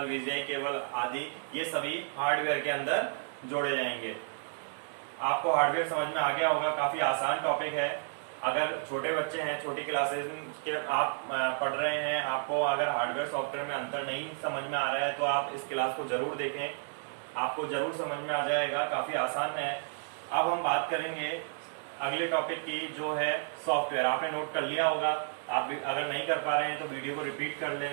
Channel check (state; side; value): silent; left; digital silence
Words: वीजीआई केबल आदि, ये सभी हार्डवेयर के अंदर जोड़े जाएंगे। आपको हार्डवेयर समझ में आ गया होगा, काफी आसान टॉपिक है। अगर छोटे बच्चे हैं, छोटी क्लासेस के आप पढ़ रहे हैं, आपको अगर हार्डवेयर सॉफ्टवेयर में अंतर नहीं समझ में आ रहा है तो आप इस क्लास को जरूर देखें, आपको जरूर समझ में आ जाएगा, काफी आसान है। अब हम बात करेंगे अगले टॉपिक की, जो है सॉफ्टवेयर। आपने नोट कर लिया होगा, आप अगर नहीं कर पा रहे हैं तो वीडियो को रिपीट कर